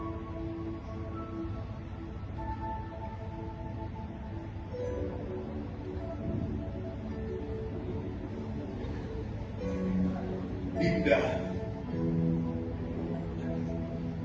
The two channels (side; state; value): both; identical; correlation 1.00